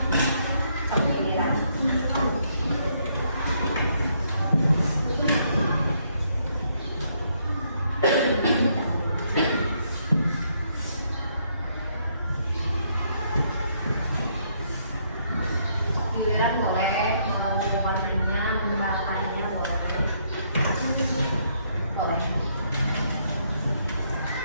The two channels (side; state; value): both; inverted; correlation -0.72